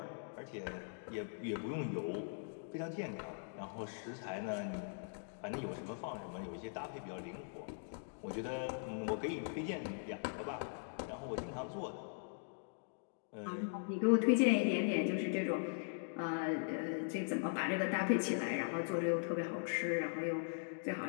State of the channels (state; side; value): silent; right; digital silence